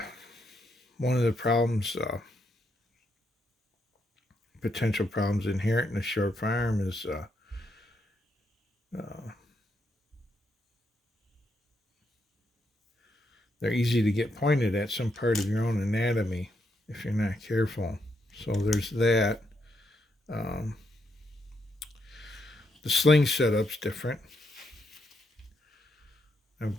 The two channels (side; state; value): both; normal; correlation 0.79